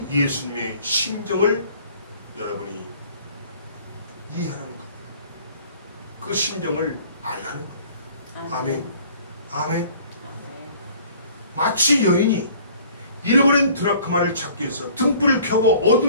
예수님의 심정을 여러분이 이해하라는 겁니다. 그 심정을 알라는 겁니다. 아멘. 아멘. 마치 여인이 잃어버린 드라크마를 찾기 위해서 등불을 켜고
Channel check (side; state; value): both; inverted; correlation -0.53